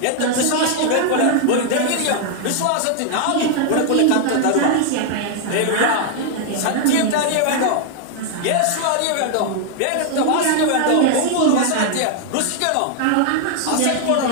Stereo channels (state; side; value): different; both; correlation 0.00